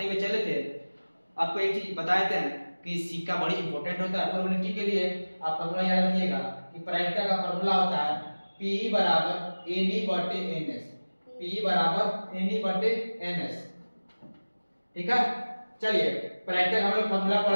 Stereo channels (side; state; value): both; inverted; correlation -1.00